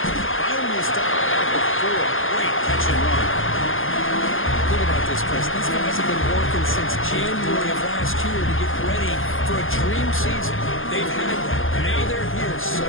Finally stopped at the 4. Great catch and run. Think about this, Chris. These guys have been working since January of last year to get ready for a dream season. They've had that. Now they're here so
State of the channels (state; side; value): late; right; 0.59 ms